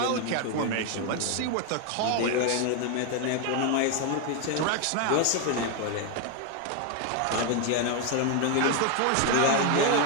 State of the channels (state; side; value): different; both; correlation 0.01